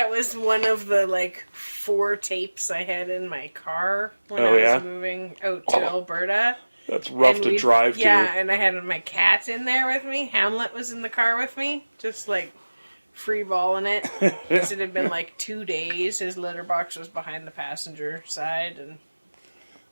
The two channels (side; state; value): both; inverted; correlation -1.00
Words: of the 4 tapes I had in my car when Oh, I yeah? was moving out to Alberta. That's rough And to drive to. Yeah, and I had my cat in there with me. Hamlet was in the car with me, just free balling it. 'Cause it had been 2 days. His litter box was behind the passenger side, and